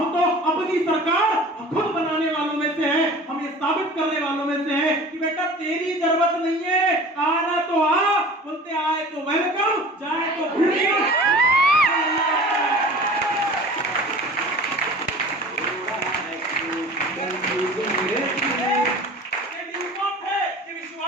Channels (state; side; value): normal; both; correlation 0.41